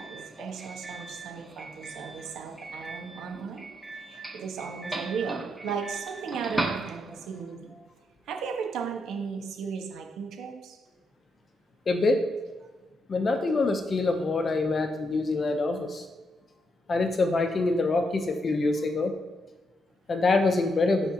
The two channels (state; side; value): normal; both; correlation 0.81